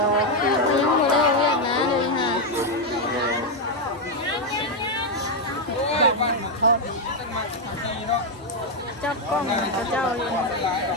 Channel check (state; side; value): normal; both; correlation 0.03